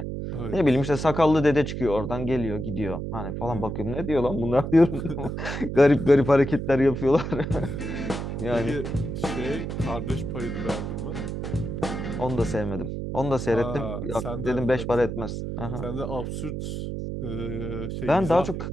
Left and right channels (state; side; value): noise; right; hum, 5 dB below the sound